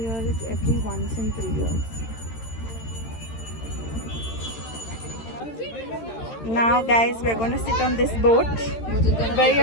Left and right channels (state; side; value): late; right; 13 ms